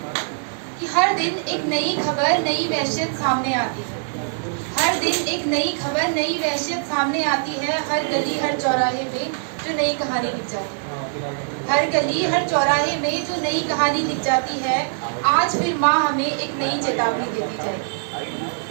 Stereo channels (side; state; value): left; silent; digital silence